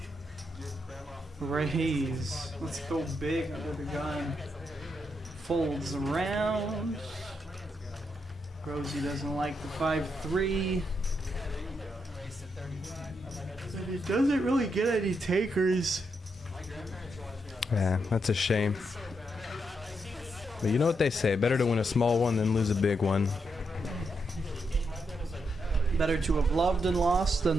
Raise. Let's go big under the gun. Folds around. Rosie doesn't like the 5-3. And he doesn't really get any takers. Yeah, that's a shame. But you know what they say, better to win a small one than lose a big one. Better to have loved and lost than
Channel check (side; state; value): both; normal; correlation 0.81